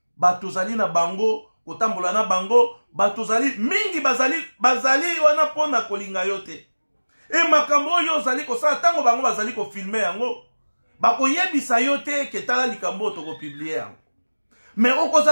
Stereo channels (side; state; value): both; inverted; correlation -1.00